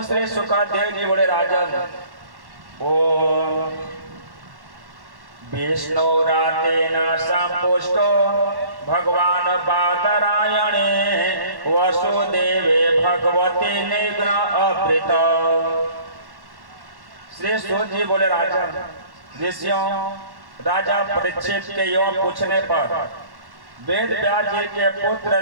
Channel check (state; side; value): late; left; 1.1 ms